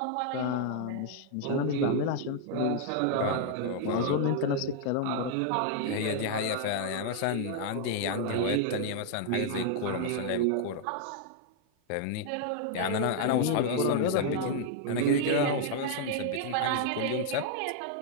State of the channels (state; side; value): different; both; correlation 0.00